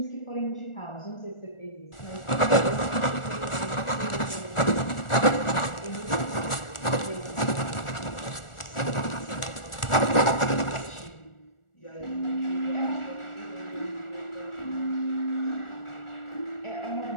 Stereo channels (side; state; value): right; late; 1.4 ms